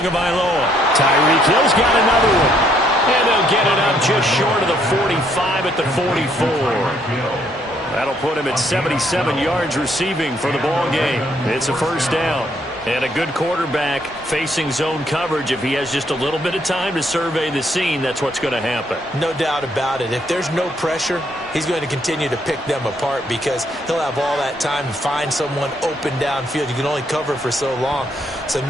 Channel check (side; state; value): both; normal; correlation 0.69